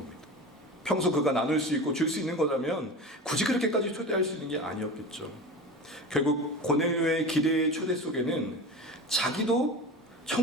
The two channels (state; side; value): normal; both; correlation 0.30